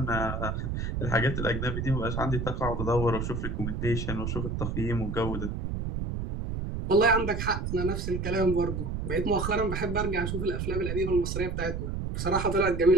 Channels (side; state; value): right; noise; rumble, 3 dB below the sound